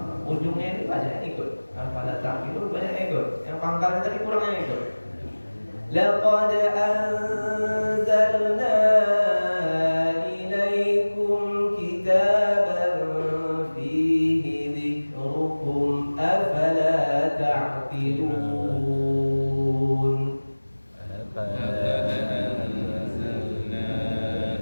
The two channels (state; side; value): inverted; both; correlation -1.00